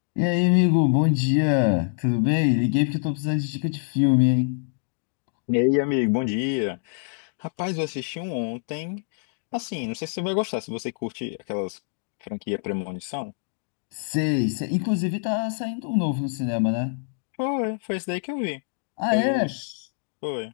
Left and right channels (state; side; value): silent; right; digital silence